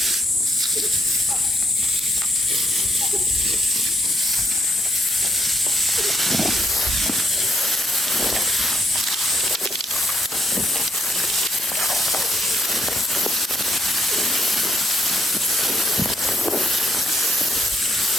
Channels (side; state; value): both; normal; correlation 0.71